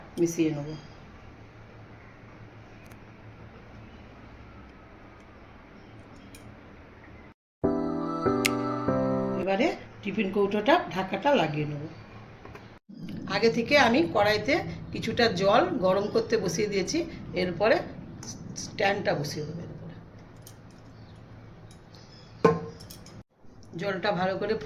মিশিয়ে নেব। এবারে টিফিন কৌটোটা ঢাকাটা লাগিয়ে নেব। আগে থেকে আমি কড়াইতে কিছুটা জল গরম করতে বসিয়ে দিয়েছি। এরপরে স্ট্যান্ডটা বসিয়ে দেবো। এরপরে জলটা ভালো করে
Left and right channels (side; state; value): both; identical; correlation 1.00